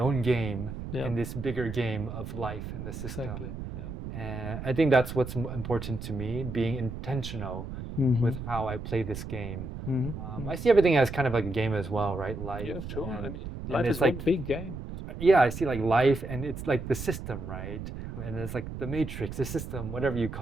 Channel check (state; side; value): noise; right; rumble, 8 dB below the sound